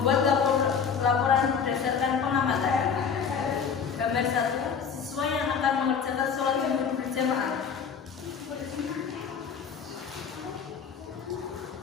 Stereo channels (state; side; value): quieter; right; 6.6 dB